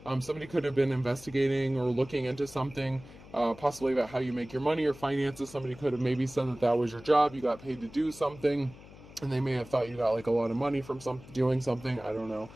somebody could have been investigating or looking into something, possibly about how you make your money or finances. Somebody could have maybe said that that was your job. You got paid to do something, and they may have thought you got like a lot of money from doing something. I don't know.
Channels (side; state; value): left; noise; hum, 19 dB below the sound